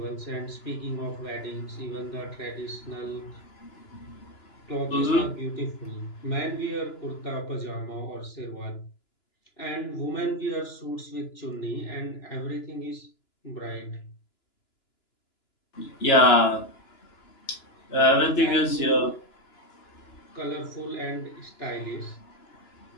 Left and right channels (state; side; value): late; right; 2.9 ms